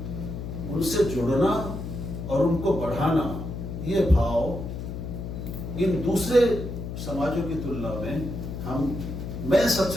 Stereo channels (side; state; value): left; noise; hum, 7 dB below the sound